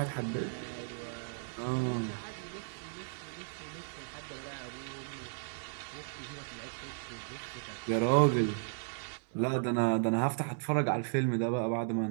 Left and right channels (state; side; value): silent; left; 54 dB below the other